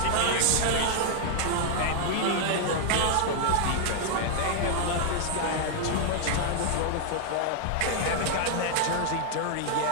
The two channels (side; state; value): both; different; correlation 0.00